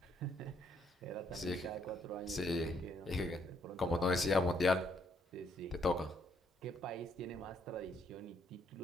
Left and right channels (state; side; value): normal; both; correlation 0.70